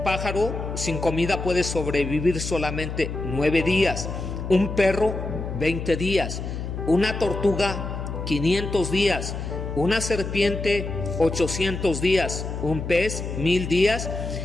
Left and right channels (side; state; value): left; noise; hum, 6 dB below the sound